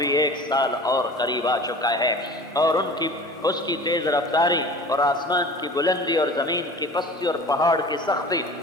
1 سال اور قریب آ چکا ہے، اور اس کی تیز رفتاری اور آسمان کی بلندی اور زمین کی پستی اور پہاڑ کی سختی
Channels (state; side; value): normal; both; correlation 0.40